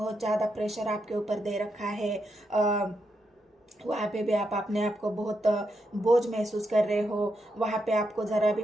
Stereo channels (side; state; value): both; normal; correlation 0.82